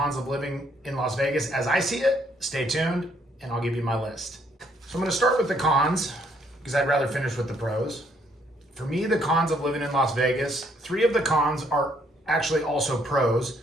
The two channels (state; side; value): normal; both; correlation 0.68